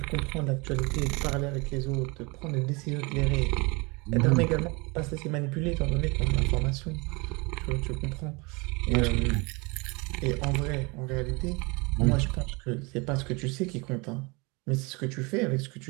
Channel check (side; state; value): left; quieter; 27.6 dB